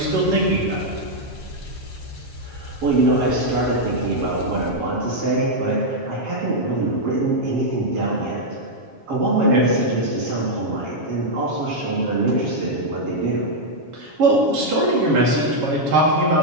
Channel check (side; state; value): left; late; 7.3 ms